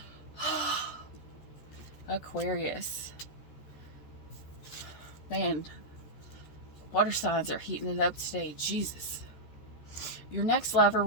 Aquarius. Man, water signs are heating it up today. Jesus. Your next lover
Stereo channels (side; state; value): right; late; 13 ms